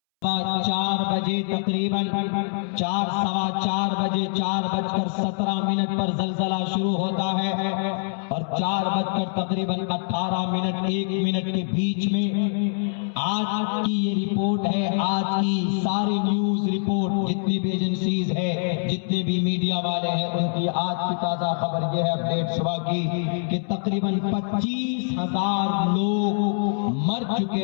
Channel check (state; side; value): silent; right; 62 dB below the other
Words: 4 بجے تقریباً 4:15 پر زلزلہ شروع ہوتا ہے اور 4 تقریباً 18 1 منٹ کے بیچ میں آج کی یہ رپورٹ ہے، آج کی ساری نیوز رپورٹ جتنی بھی ایجنسیز ہے، جتنے بھی میڈیا والے ہیں، ان کی آج کی تازہ خبر یہ ہے اپڈیٹ صبح کی کہ تقریباً 25,000 لوگ مر